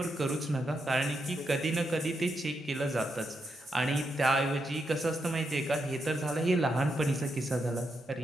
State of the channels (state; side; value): normal; both; correlation 0.83